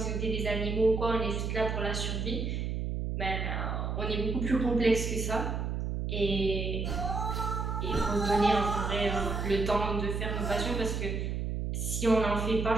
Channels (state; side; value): noise; right; hum, 1 dB below the sound